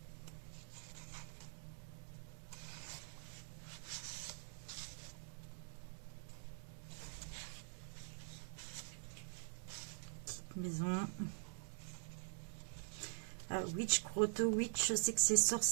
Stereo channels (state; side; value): silent; left; digital silence